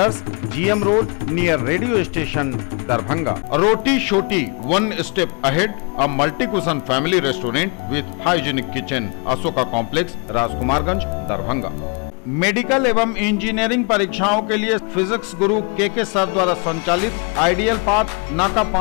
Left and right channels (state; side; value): quieter; right; 34.9 dB